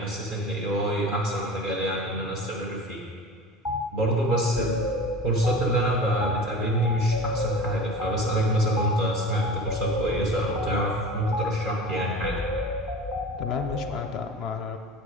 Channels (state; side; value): normal; both; correlation 0.36